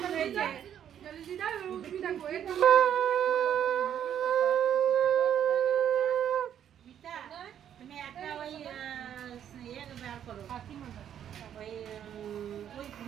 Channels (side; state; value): left; quieter; 9.7 dB